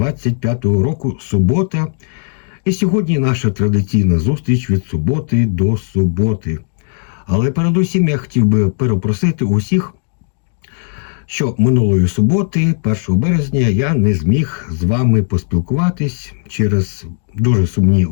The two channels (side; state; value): right; silent; digital silence